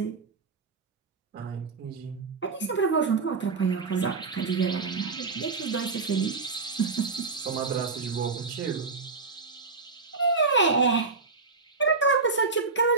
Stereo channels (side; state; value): left; quieter; 4.3 dB